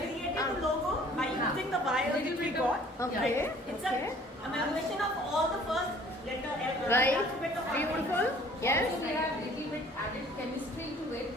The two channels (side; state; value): both; normal; correlation 0.54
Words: created a logo by using the wires which we got. okay. It's an amalgamation of all the first letter Right. alphabet of our name. Beautiful. Yes. Also, we have little bit added chemistry to it,